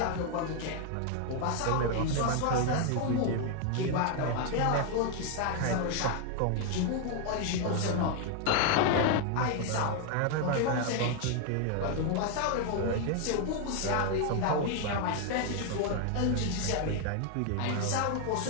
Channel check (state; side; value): different; both; correlation 0.00